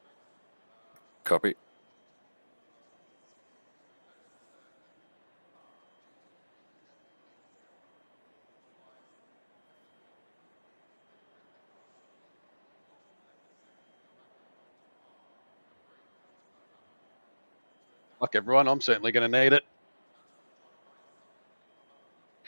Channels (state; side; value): inverted; both; correlation -1.00